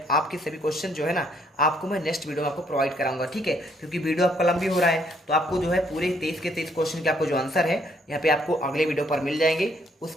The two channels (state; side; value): normal; both; correlation 0.68